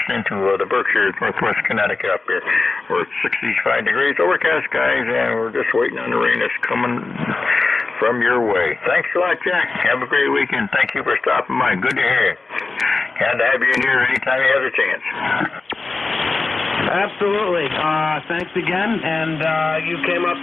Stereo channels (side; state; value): right; quieter; 3.7 dB